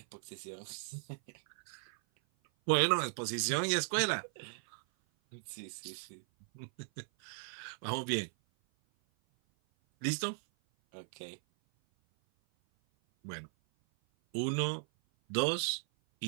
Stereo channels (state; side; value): silent; left; 53 dB below the other